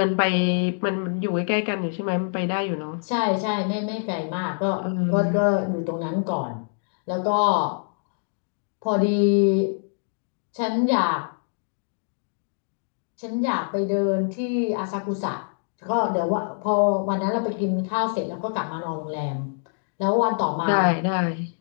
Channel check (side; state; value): right; silent; digital silence